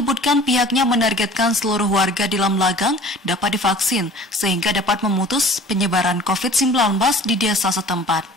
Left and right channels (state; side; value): normal; both; correlation 0.46